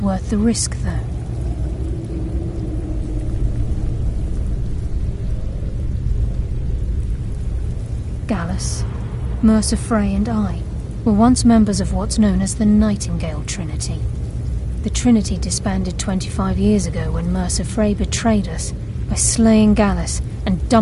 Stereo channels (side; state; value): both; identical; correlation 1.00